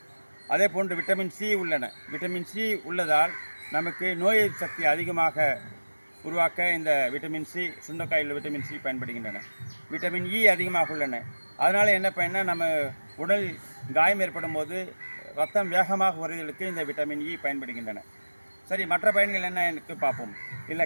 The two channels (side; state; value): both; inverted; correlation -1.00